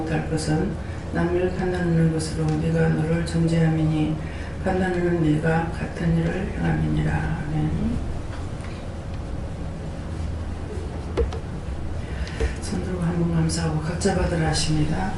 것은 남을 판단하는 것으로 네가 너를 정죄함이니 판단하는 네가 같은 일을 행함이니라. 아멘. 손들고 한번 감사하고 각자 받으라 하십니다.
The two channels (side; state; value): both; identical; correlation 1.00